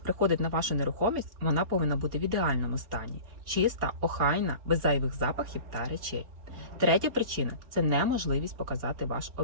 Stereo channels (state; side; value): late; left; 4.1 ms